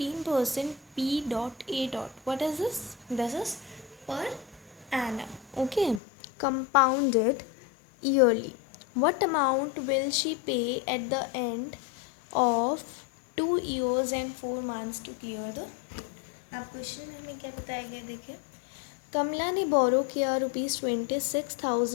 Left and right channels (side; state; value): right; drops out; at 6.0 s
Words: P dot A dot. What is this? This is per annum. Okay. Compounded yearly. What amount will she pay at the end of 2 years and 4 months to clear the? अब question में हमें क्या बताया गया देखिए। कमला ने बोरो किया